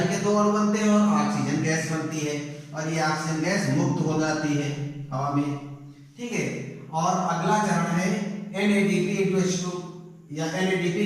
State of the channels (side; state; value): both; identical; correlation 1.00